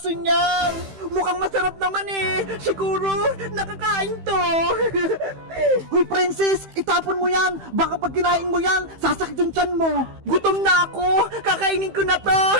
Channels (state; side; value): late; left; 15 ms